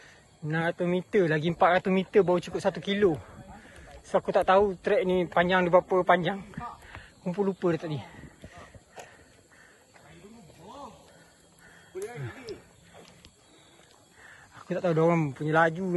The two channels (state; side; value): identical; both; correlation 1.00